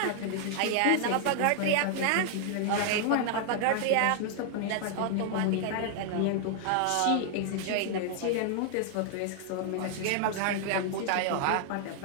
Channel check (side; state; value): both; different; correlation 0.00